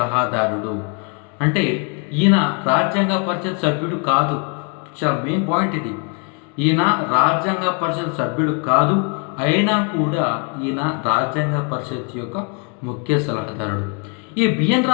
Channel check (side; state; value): right; quieter; 37.3 dB